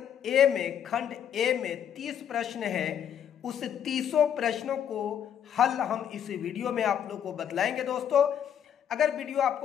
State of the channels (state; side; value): quieter; right; 9.1 dB